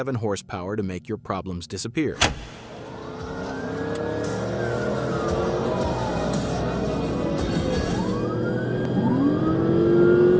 horsepower to make your problems disappear.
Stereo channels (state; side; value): identical; both; correlation 1.00